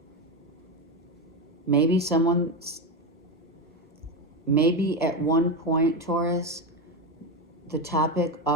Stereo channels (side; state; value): both; normal; correlation 0.13